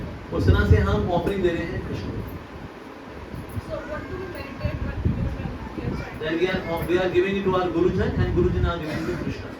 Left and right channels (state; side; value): identical; both; correlation 1.00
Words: उस तरह से हम ऑफरिंग दे रहे हैं कृष्ण को। Then we are giving it to our Gurujan and Gurujan are giving it to Krishna.